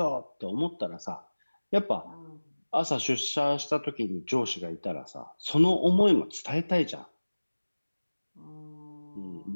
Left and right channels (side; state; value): both; inverted; correlation -1.00